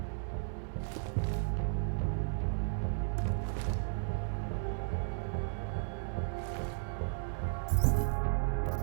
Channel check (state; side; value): silent; left; 55 dB below the other